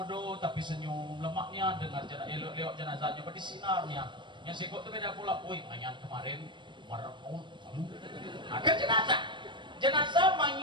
tapi senyum, lemaknya dengar elok-elok jenazahnya berdisinarnya. Yang sikut itu beda pula, woi mayat kemarin marahun, ada jenazah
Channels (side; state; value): left; late; 0.23 ms